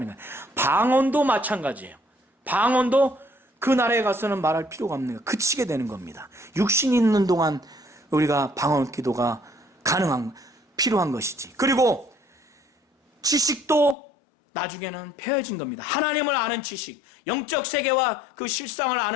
거예요. 방언도 마찬가지예요. 방언도 그 나라에 가서는 말할 필요가 없는 거예요. 그치게 되는 겁니다. 육신이 있는 동안 우리가 방언 기도가 필요한 것이지. 그리고 지식도 나중에는 폐해진 겁니다. 하나님을 아는 지식, 영적 세계와 그 실상을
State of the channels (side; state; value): right; drops out; at 14.0 s